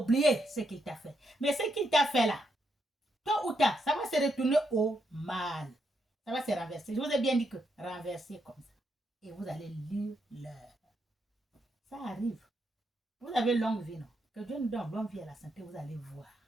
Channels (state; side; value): normal; both; correlation 0.79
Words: ce qu'il t'a fait. Mais ce qu'il t'a fait là, tôt ou tard, ça va se retourner au mal. Ça va se renverser. Je vous ai bien dit que renverser comme ça. Et vous allez lire l'heure. Ça arrive. Vous avez longue vie, non? Que Dieu nous donne longue vie à la santé, vous allez voir.